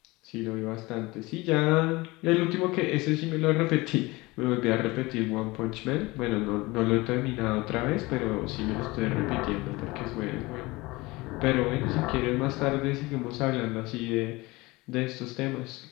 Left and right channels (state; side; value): quieter; right; 22.2 dB